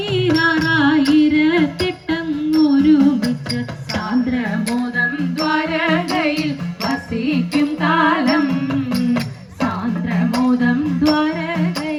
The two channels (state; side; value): identical; both; correlation 1.00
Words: സാന്ദ്രമോദം ദ്വാരകയിൽ വസിക്കും കാലം സാന്ദ്രമോദം